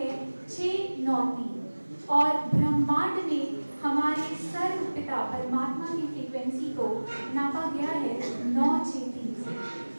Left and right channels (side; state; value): both; inverted; correlation -1.00